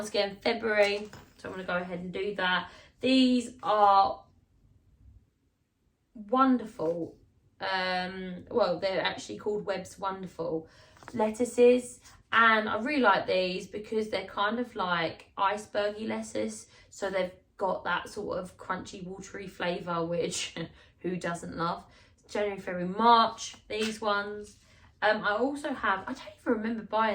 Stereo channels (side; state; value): both; identical; correlation 1.00